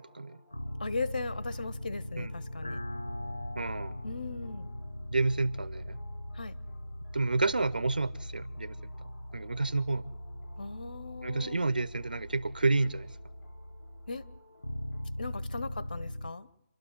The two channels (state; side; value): inverted; both; correlation -0.89